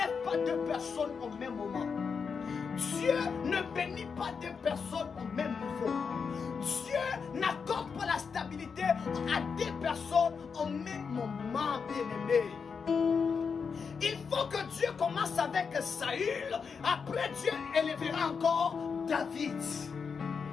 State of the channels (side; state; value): right; quieter; 5.8 dB